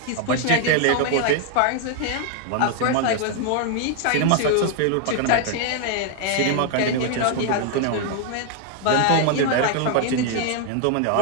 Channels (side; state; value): both; different; correlation 0.00